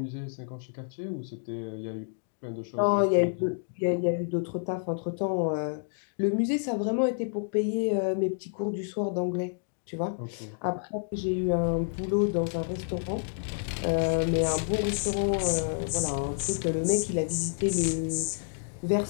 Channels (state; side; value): silent; right; digital silence